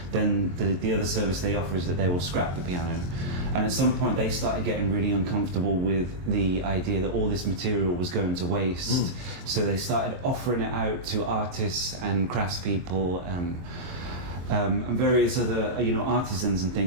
then the other service they offer is that they will scrap the piano. And at some point they started getting really uncomfortable with the idea that all this material was going to waste. So they started offering it out to artists and craftspeople and various other artisans and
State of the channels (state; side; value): late; left; 23 ms